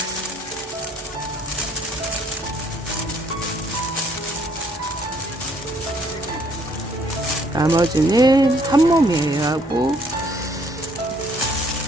나머지는 한 몸이에요. 하고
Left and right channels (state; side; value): normal; both; correlation 0.64